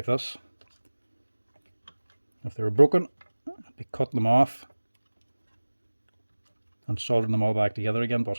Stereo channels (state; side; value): inverted; both; correlation -1.00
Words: this. If they were broken, I'd be cutting them off and soldering them all back together again,